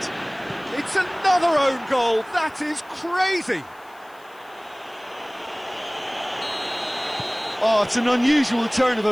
It's another own goal. That is crazy. Oh, it's an unusual turn of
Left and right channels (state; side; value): noise; left; hiss, 29 dB below the sound